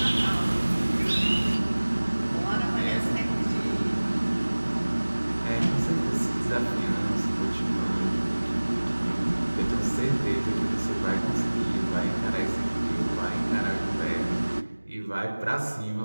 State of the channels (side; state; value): both; inverted; correlation -1.00